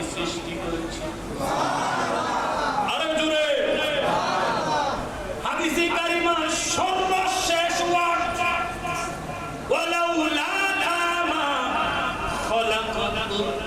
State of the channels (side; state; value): both; identical; correlation 1.00